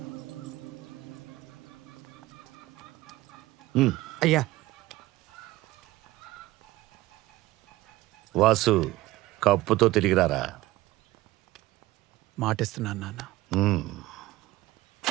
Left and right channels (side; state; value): left; quieter; 17.9 dB